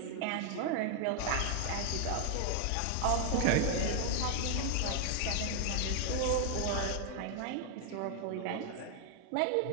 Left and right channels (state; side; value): different; both; correlation 0.00